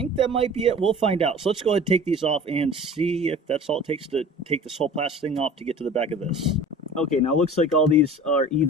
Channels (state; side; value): normal; both; correlation 0.41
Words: that might be it. We'll find out. So let's go ahead and take these off and see if that's all it takes to take this whole plastic thing off to get to the back of this. Okay, now it looks like all these are